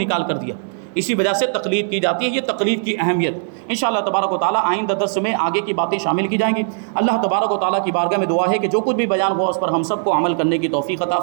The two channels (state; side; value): silent; left; digital silence